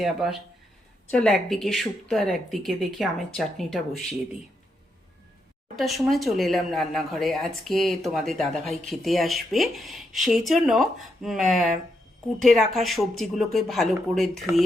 আবার। চল, একদিকে শুক্তো আর একদিকে দেখি আমের চাটনিটা বসিয়ে দিই। ওটার সময় চলে এলাম রান্নাঘরে। আজকে তোমাদের দাদাভাই খেতে আসবে, সেই জন্য কুটে রাখা সবজিগুলোকে ভালো করে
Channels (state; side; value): normal; both; correlation 0.81